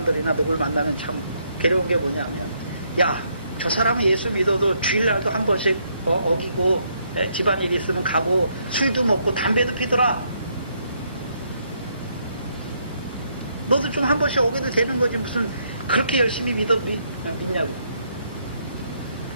누굴 만나면 참 괴로운 게 뭐냐면, 야, 저 사람은 예수 믿어도 주일날도 한 번씩 어기고 집안일 있으면 가고 술도 먹고 담배도 피더라. 너도 좀 한 번씩 어겨도 되는 거지 무슨 그렇게 열심히 믿냐고.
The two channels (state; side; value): inverted; both; correlation -0.73